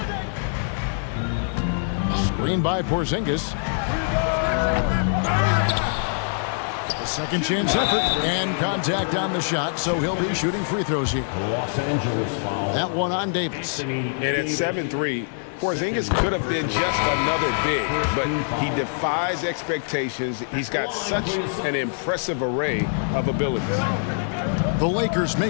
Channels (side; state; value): right; silent; 60 dB below the other